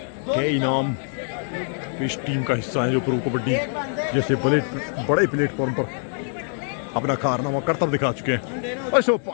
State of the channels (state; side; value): silent; right; 55 dB below the other